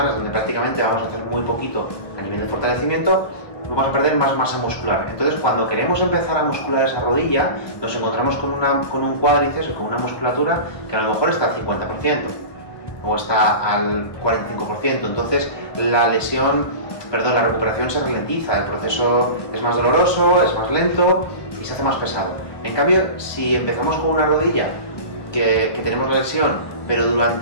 donde prácticamente vamos a hacer muy poquito a nivel de fortalecimiento, vamos a perder más masa muscular. Entonces, cuando queremos empezar a muscular esa rodilla, nos encontramos con un cuádriceps o con una musculatura que a lo mejor está al 50% o está al 45%. Entonces, la recuperación se ralentiza, el proceso es más doloroso, es más lento y se hace más pesado. En cambio, si empezamos con una rodilla que tenemos la lesión, pero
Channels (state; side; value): late; right; 1.2 ms